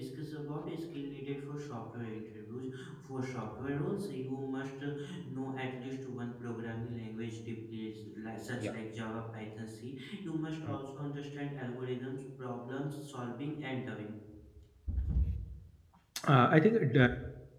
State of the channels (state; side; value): identical; both; correlation 1.00